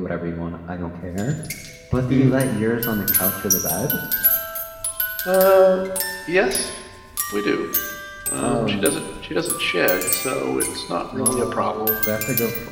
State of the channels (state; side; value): identical; both; correlation 1.00